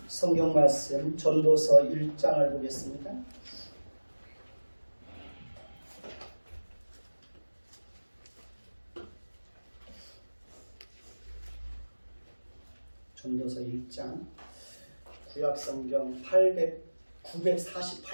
성경 말씀 전도서 1장을 보겠습니다. 전도서 1장 구약성경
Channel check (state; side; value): inverted; both; correlation -1.00